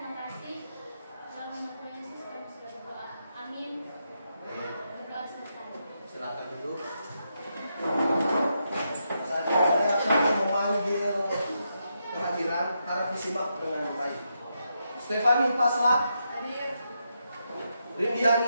kasih. Dalam nama Tuhan Yesus kami sudah berdoa. Amin. Berdoa selesai. Silakan duduk. Saat ini saya akan memanggil kehadiran, harap disimak dengan baik. Stefani Pasla, Hadir.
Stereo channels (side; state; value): both; inverted; correlation -0.83